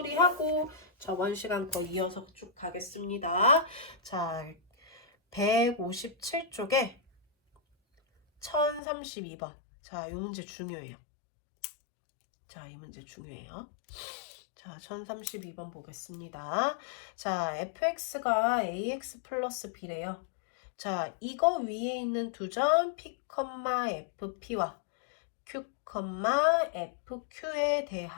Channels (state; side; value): drops out; right; at 8.8 s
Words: 저번 시간 거 이어서 쭉 가겠습니다. 자, 157쪽에 1032번. 자, 이 문제 중요해요. 자, 이 문제 중요해요. 자, 1032번 보겠습니다. 자, fx가 ax 플러스 b래요. 자, 이거 위에 있는 두 점 p, fp와 q, fq에